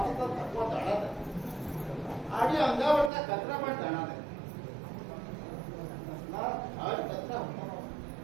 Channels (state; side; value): drops out; left; at 3.1 s